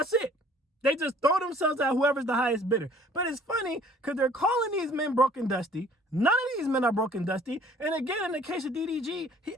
it. They just throw themselves at whoever's the highest bidder. But it's funny because they're calling these men broke and dusty. None of these men are broke and dusty. And again, in the case of DDG, he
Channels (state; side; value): normal; both; correlation 0.55